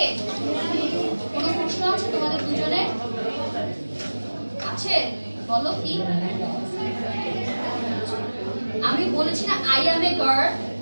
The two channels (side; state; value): both; inverted; correlation -1.00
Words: কোনো প্রশ্ন আছে তোমাদের দুজনে? আছে? বলো কি? আমি বলেছি না আই অ্যাম এ গার্ল।